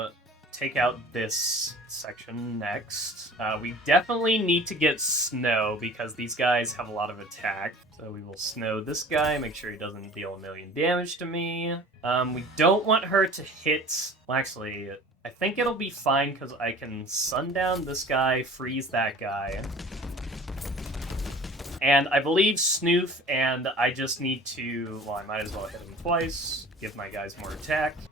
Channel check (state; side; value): normal; both; correlation 0.44